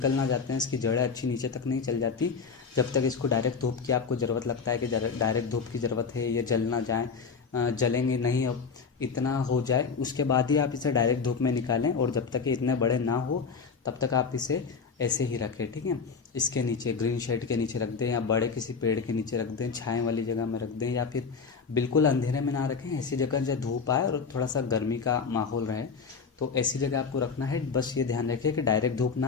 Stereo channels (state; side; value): quieter; right; 5.4 dB